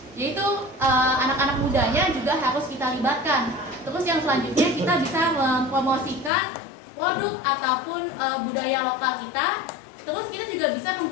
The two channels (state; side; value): drops out; right; at 6.3 s